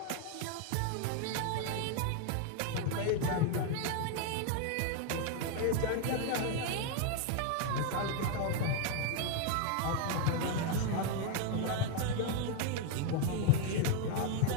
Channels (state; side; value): different; both; correlation 0.01